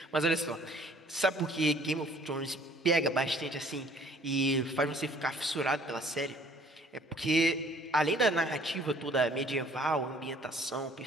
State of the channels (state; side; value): normal; both; correlation 0.56